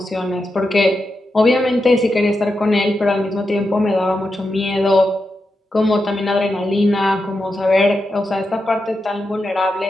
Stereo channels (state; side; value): normal; both; correlation 0.88